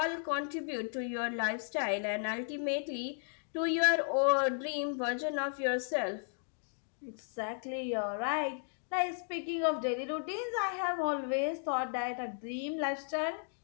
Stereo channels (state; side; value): silent; right; digital silence